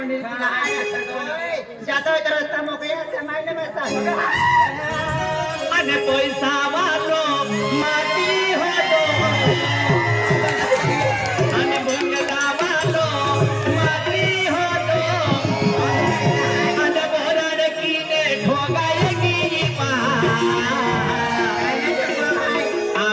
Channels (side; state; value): both; identical; correlation 1.00